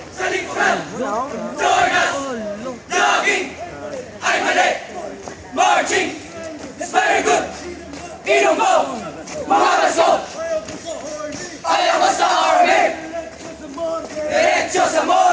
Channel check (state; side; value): identical; both; correlation 1.00